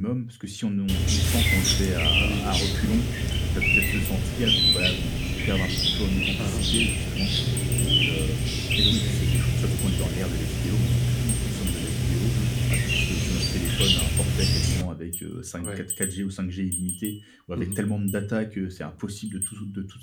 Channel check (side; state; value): both; identical; correlation 1.00